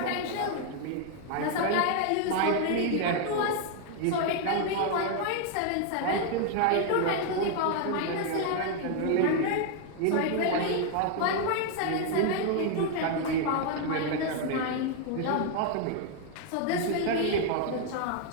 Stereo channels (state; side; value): different; both; correlation 0.00